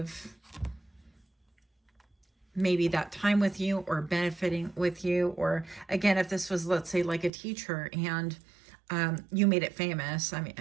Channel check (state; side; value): drops out; left; at 7.3 s